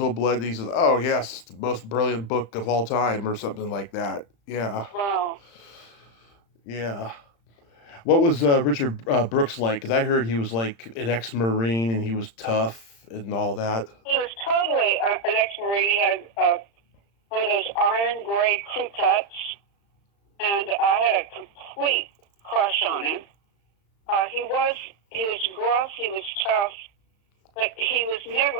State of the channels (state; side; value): late; right; 35 ms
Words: Blood?" And he says, "Oh yes, it's the most brilliant book of all time," or something like that. Yeah, Wow. yeah. What was Richard Brooks like? Because I heard he was like an ex-Marine and he was tough and all that. He was totally an ex-Marine. He had one of those iron gray crew cuts, and I had a complete crush on him. He was gruff, he was tough, but he was